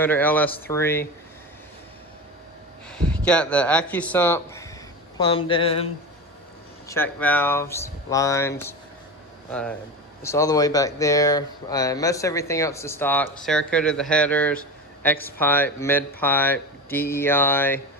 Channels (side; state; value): both; normal; correlation 0.26